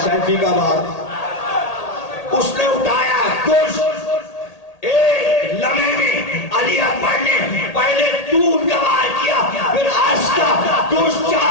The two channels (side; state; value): right; late; 1.8 ms